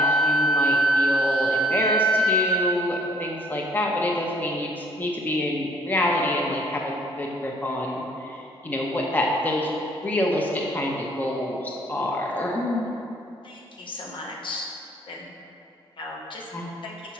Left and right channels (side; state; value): both; normal; correlation 0.60